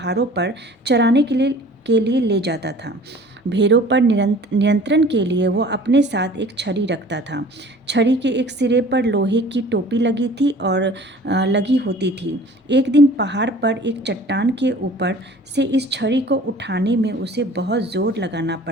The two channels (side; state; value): both; normal; correlation 0.47